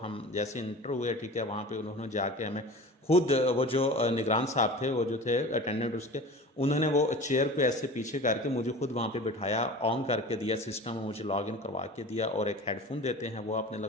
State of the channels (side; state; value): both; normal; correlation 0.37